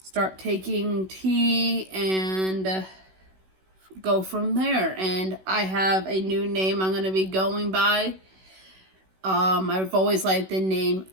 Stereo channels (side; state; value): left; late; 16 ms